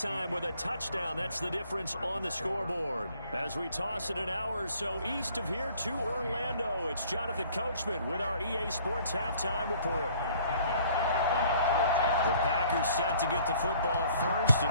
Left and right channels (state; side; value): inverted; both; correlation -0.57